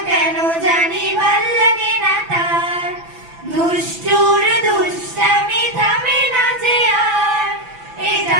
কেন জানি ভাল লাগে না তার। দুষ্টুর দুষ্টামি থামে না যে আর,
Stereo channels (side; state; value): left; late; 6.0 ms